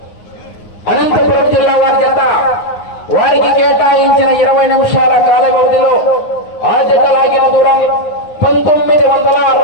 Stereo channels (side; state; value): right; late; 9.7 ms